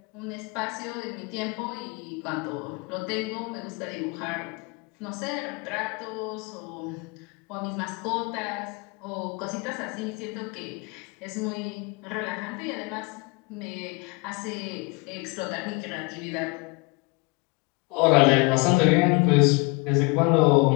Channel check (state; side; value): quieter; right; 28.5 dB